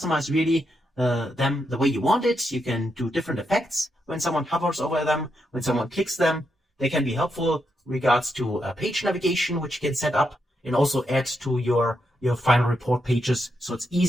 really them the way you want it. You can do different effects when someone hovers over them, when someone clicks them. They can be helpful regards to page navigation, which you can set up and also add to your final report pages. So it's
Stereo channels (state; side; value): normal; both; correlation 0.82